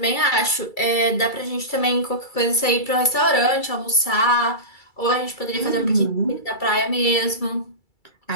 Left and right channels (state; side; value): late; right; 2.3 ms